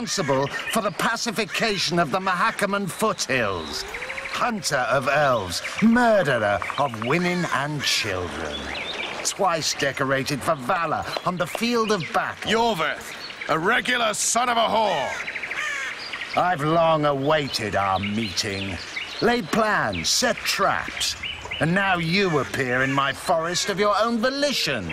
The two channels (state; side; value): identical; both; correlation 1.00